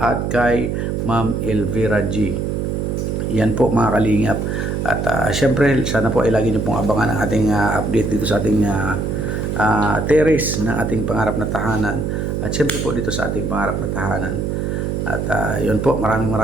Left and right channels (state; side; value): noise; right; hum, 1 dB below the sound